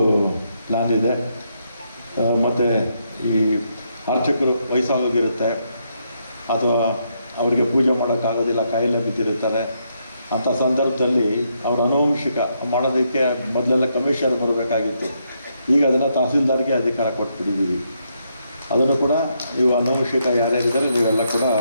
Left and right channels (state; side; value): inverted; both; correlation -0.78